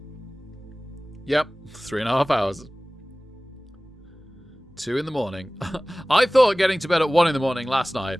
Yep, 3.5 hours. 2 in the morning. I thought getting to bed at 1 in the morning last night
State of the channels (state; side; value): normal; both; correlation 0.98